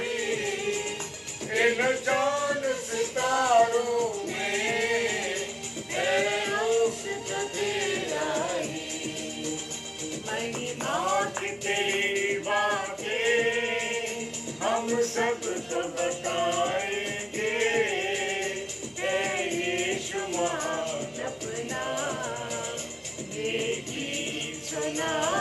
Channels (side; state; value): both; identical; correlation 1.00